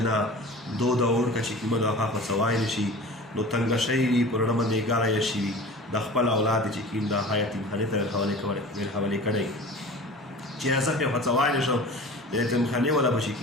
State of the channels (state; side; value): normal; both; correlation 0.39